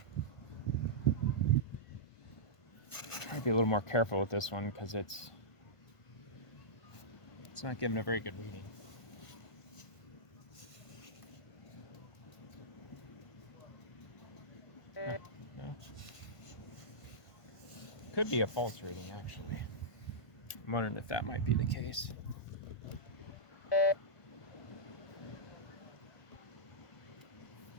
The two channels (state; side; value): late; right; 1.5 ms